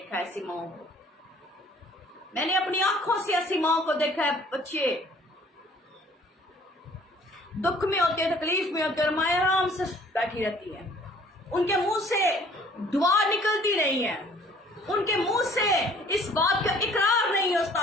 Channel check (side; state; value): both; normal; correlation 0.56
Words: है ऐसी माओ को, मैंने अपनी आंखों से ऐसी माओ को देखा है, बच्चे दुख में होते हैं, तकलीफ में होते हैं और माँ आराम से बैठी रहती हैं। उनके मुंह से दुआ निकलती नहीं है, उनके मुंह से इस बात का इकरार नहीं